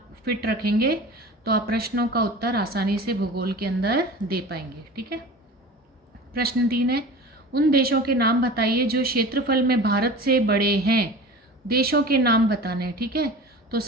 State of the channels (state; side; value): normal; both; correlation 0.36